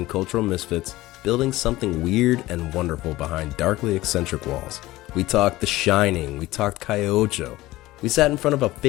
cultural misfits, building something weird and wonderful behind darkly eccentric walls. We talked The Shining, we talked Calle Ocho. We sat in front of a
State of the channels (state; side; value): quieter; right; 17.8 dB